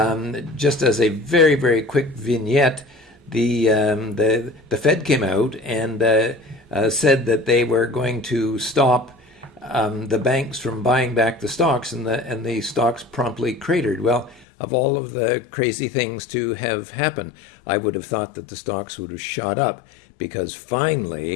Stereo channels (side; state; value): right; drops out; at 14.5 s